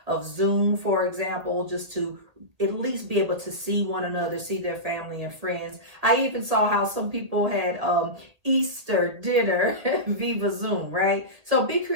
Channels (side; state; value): left; late; 1.7 ms